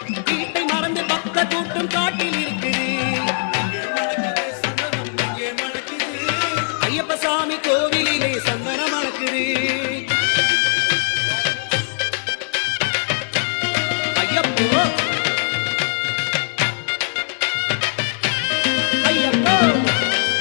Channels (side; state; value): right; silent; digital silence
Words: வீட்டை மறந்து பக்த கூட்டம் காட்டில் இருக்குது ஐயப்ப சாமி கோவிலிலே சந்தனம் மணக்குது ஐயப்போ ஐயப்போ